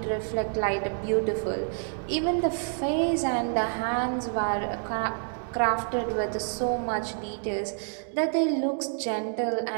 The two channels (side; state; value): left; silent; 59 dB below the other